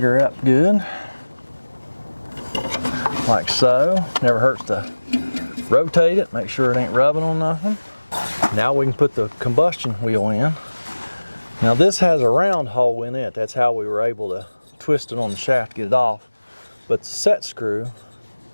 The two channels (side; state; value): both; inverted; correlation -1.00